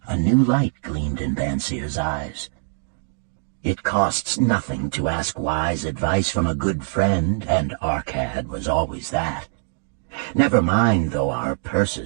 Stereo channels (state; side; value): silent; left; 64 dB below the other